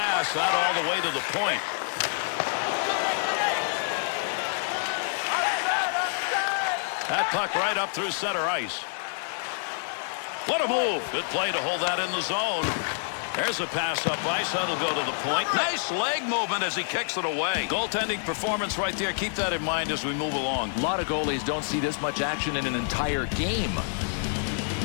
out all the way to the point. That puck right up through center ice. What a move. Good play to hold that in the zone. There's a pass up ice. That'll go to the point. Nice leg movement as he kicks it away. Goaltending performance right there. Keep that in mind as we move along. A lot of goalies don't see this much action in an entire game.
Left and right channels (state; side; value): silent; right; 60 dB below the other